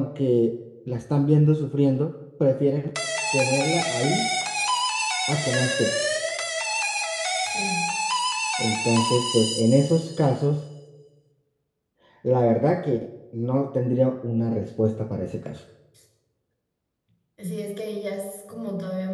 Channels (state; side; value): identical; both; correlation 1.00